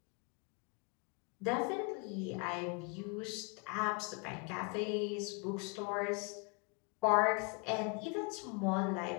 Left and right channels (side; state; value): right; quieter; 32.3 dB